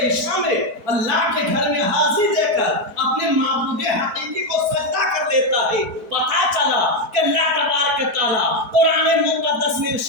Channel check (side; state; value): left; late; 4.4 ms